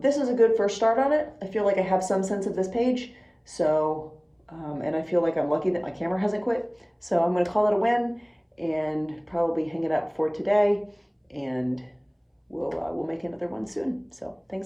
is a good first start on it. I feel like I have some sense of this page, so, and I feel like I'm lucky that my camera hasn't quit. So I'm going to call it a win and probably hang it up for today, and we'll make another one soon. So thanks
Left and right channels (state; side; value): identical; both; correlation 1.00